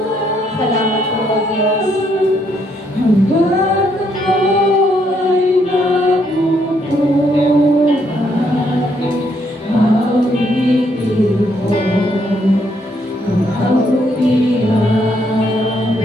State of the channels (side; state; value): both; normal; correlation 0.72